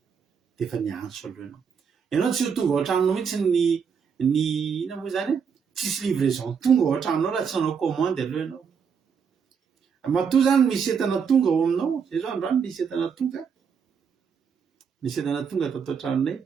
dia efa niantso aloha ianao tsy ho tonga ao an-tranonao mihitsy ny ina moa zany tsisy livraison tonga ao an-tranonao raha tsy nanao commande aloha ianao matoa zany misy entana tonga ao aminao zay zao androany misy entana tonga tato an-tranonay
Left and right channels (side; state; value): left; quieter; 6.6 dB